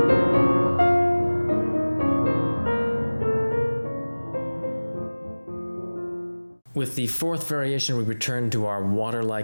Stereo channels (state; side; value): inverted; both; correlation -1.00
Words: With the fourth variation, we return to our